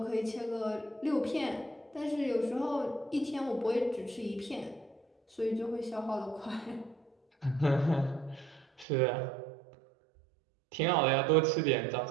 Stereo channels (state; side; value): drops out; left; at 8.8 s